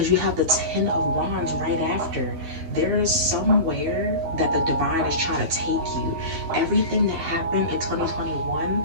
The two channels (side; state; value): left; late; 12 ms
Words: you have the 10 of wands right after. There is somewhere that the divine is trying to take you. Everything that happened in 2021